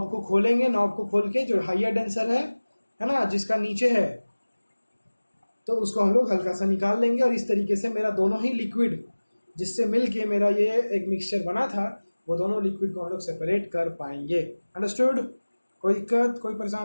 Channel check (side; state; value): both; inverted; correlation -1.00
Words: को खोलेंगे, नॉब को खोल के जो हाइयर डेंसर है ना, जिसका नीचे है, तो उसको हम लोग हल्का सा निकाल लेंगे। और इस तरीके से मेरा दोनों ही लिक्विड जिससे मिल के मेरा ये एक मिक्सचर बना था, वो दोनों लिक्विड को हम लोग सेपरेट कर पाएंगे। अंडरस्टूड? कोई दिक्कत, कोई